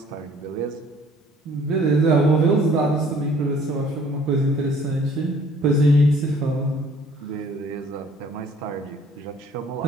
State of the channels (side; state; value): both; normal; correlation 0.56